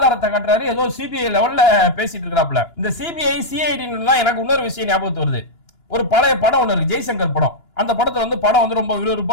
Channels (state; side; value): late; right; 2.9 ms